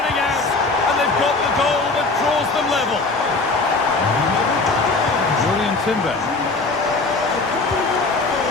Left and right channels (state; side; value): quieter; right; 3.6 dB